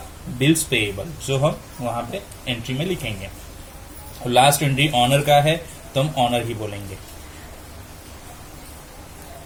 बिल्स पेएबल, जो हम वहां पे एंट्री में लिखेंगे। और लास्ट एंट्री ऑनर का है तो हम ऑनर ही बोलेंगे।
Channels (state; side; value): identical; both; correlation 1.00